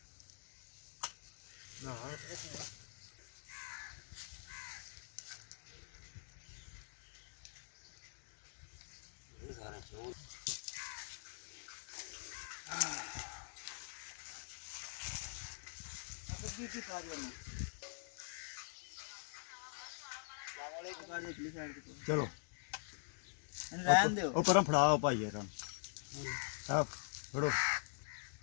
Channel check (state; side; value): silent; right; digital silence